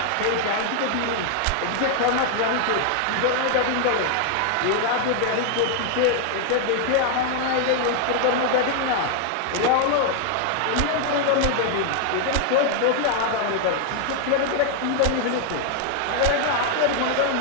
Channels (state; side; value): different; both; correlation 0.00